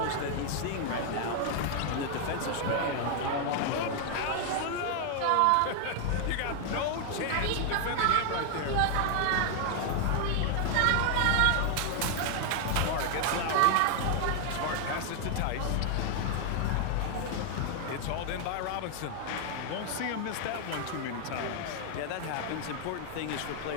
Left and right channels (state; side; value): different; both; correlation 0.00